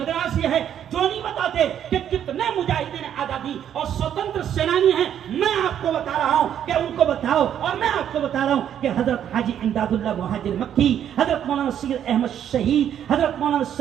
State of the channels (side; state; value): left; quieter; 9.7 dB